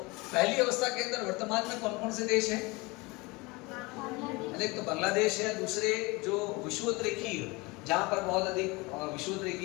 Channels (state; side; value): quieter; right; 24.8 dB